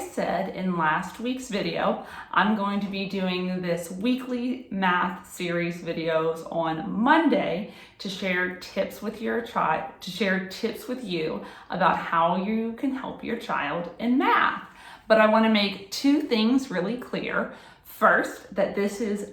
in last week's video, I'm going to be doing this weekly math series videos on Monday to share tips with your child, to share tips with you about how you can help your child in math. But I want to make two things really clear. First, that this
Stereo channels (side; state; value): both; identical; correlation 1.00